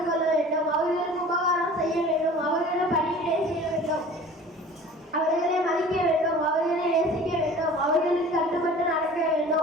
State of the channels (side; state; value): both; normal; correlation 0.43